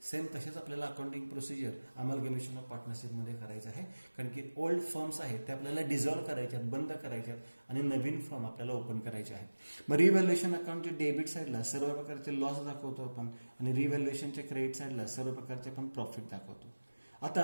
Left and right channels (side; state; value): both; inverted; correlation -1.00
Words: सेम तसेच आपल्याला accounting procedure amalgamation of partnership मध्ये करायचं आहे, कारण की ओल्ड फर्म्स आहेत ते आपल्याला डिझॉल्व्ह करायच्यात, बंद करायच्यात आणि नवीन फर्म आपल्याला ओपन करायचे आहेत. मग रिव्हॅल्युएशन अकाउंटच्या डेबिट साईडला सर्व प्रकारचे लॉस दाखवतो आपण आणि रिव्हॅल्युएशनच्या क्रेडिट साईडला सर्व प्रकारचे आपण प्रॉफिट दाखवतो. आता